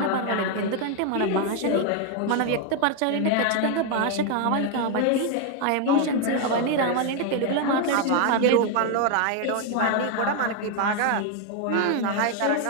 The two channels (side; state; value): both; different; correlation 0.01